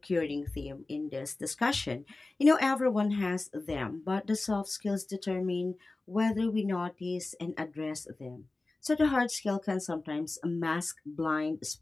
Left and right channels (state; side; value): quieter; right; 3.2 dB